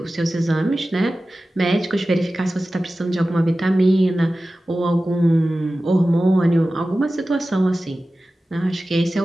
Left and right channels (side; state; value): both; normal; correlation 0.95